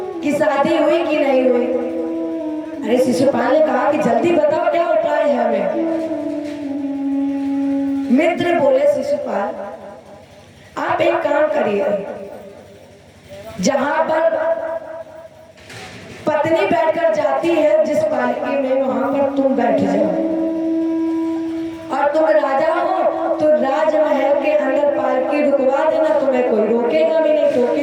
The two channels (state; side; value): identical; both; correlation 1.00